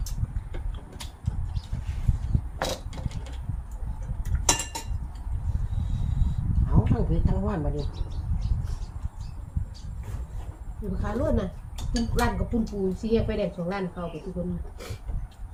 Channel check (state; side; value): identical; both; correlation 1.00